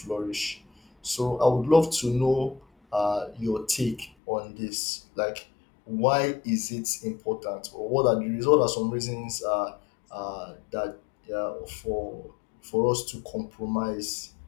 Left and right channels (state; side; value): drops out; right; at 4.1 s